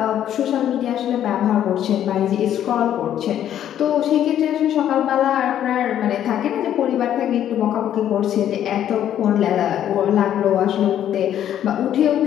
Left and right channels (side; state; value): right; quieter; 10.7 dB